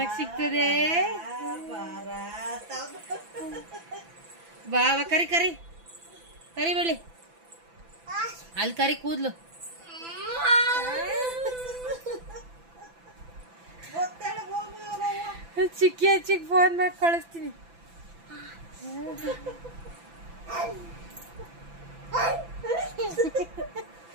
ಸಿಗ್ತದೆ. ಬಾ ಕರಿ ಕರಿ ಕರಿ ಬಳಿ ಅಲ್ಲಿ ಕರಿ ಕೂದ್ಲು. ಚಿಕ್ಕಿ ಹಚ್ಚಿಗೆ ಫೋನ್ ಮಾಡಿ ಕಳಿಸ್ತೀನಿ.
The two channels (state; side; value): late; left; 6.0 ms